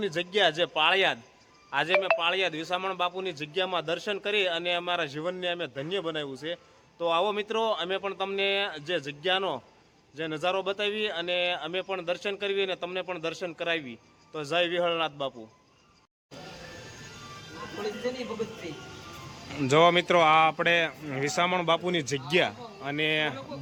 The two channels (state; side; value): identical; both; correlation 1.00